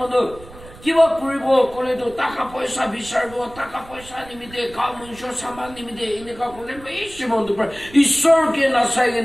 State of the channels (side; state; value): right; noise; rumble, 19 dB below the sound